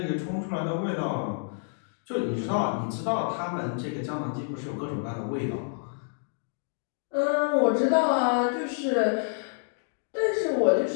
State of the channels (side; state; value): right; silent; digital silence